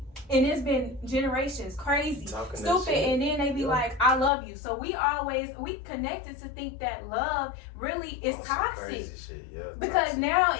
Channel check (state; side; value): drops out; right; at 4.3 s